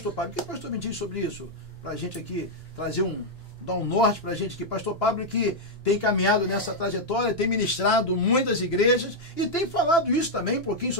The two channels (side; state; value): both; normal; correlation -0.02